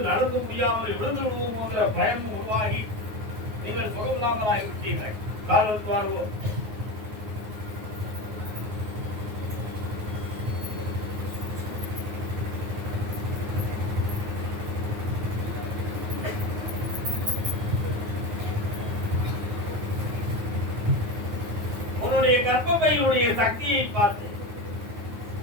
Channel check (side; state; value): left; late; 9.4 ms